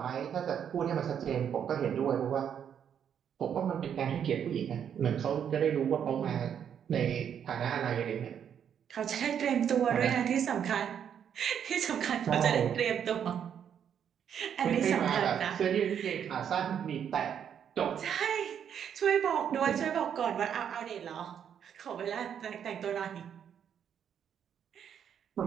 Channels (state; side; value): quieter; left; 8.5 dB